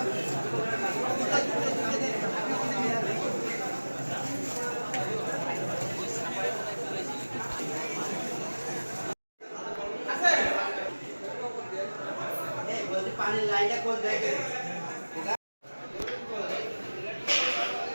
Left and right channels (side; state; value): both; inverted; correlation -1.00